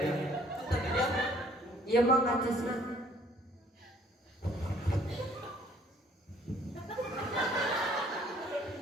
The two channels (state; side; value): normal; both; correlation 0.59